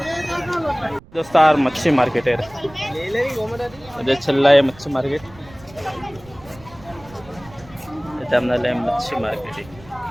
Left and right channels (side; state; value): right; noise; rumble, 22 dB below the sound